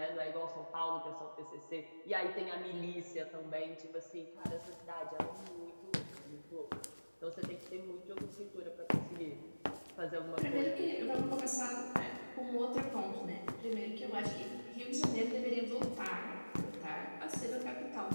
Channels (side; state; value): both; inverted; correlation -1.00